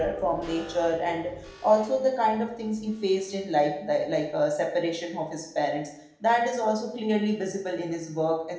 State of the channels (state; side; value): identical; both; correlation 1.00